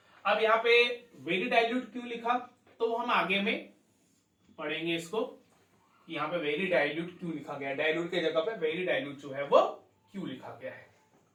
अब यहां पे वेरी डाइल्यूट क्यों लिखा तो हम आगे में पढ़ेंगे इसको। यहां पे वेरी डाइल्यूट क्यों लिखा गया, डाइल्यूट के जगह पे वेरी डाइल्यूट जो है वो क्यों लिखा गया है।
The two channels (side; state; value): both; identical; correlation 1.00